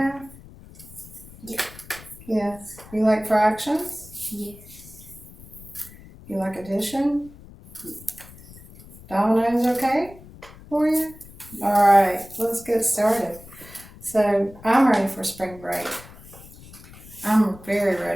Yeah. Yes. You like fractions? Yes. You like addition? Dominoes okay for you? Alright, let's get started. So I'm ready for spring break. I'm very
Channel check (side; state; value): left; noise; rumble, 19 dB below the sound